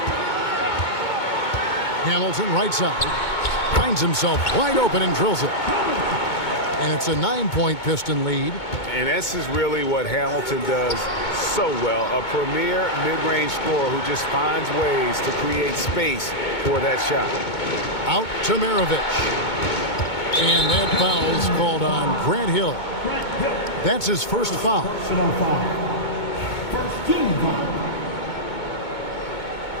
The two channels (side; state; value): right; late; 2.2 ms